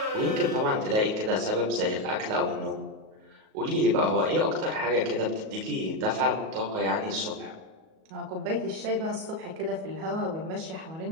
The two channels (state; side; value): late; left; 37 ms